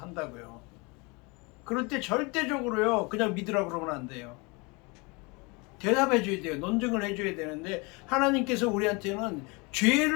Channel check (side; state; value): right; quieter; 28.2 dB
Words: 그럴 때 절대적으로요, 그냥 믿으라 그러면 안 돼요. 대답해 줘야 돼요. 논증을 해줘야 되는데, 하나님께서 우리한테는